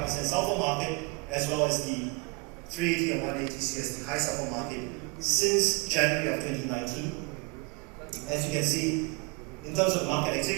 sulfur market as well as the 380 and 180 TCS, the high sulfur market, since January of 2019. As you can see, in terms of market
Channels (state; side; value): quieter; left; 28.8 dB